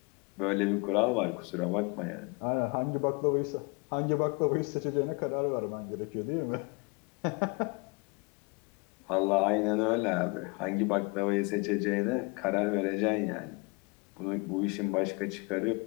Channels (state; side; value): quieter; right; 29.2 dB